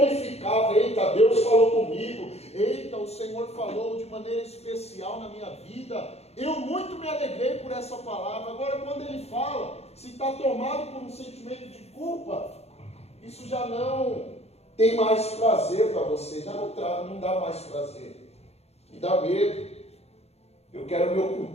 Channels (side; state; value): right; late; 0.30 ms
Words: eita, Deus falou comigo, eita, o Senhor falou de maneira especial na minha vida, eu muito me alegrei por essa palavra. Agora, quando ele fala, se está tomado por um sentimento de culpa, isso já não tem mais prazer para você, já não dá mais prazer. Me dá medo. Eu quero me